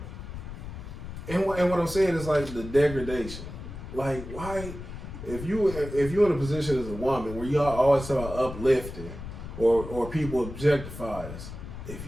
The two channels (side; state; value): left; noise; rumble, 10 dB below the sound